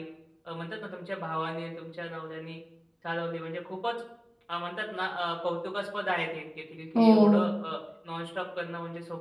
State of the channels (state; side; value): identical; both; correlation 1.00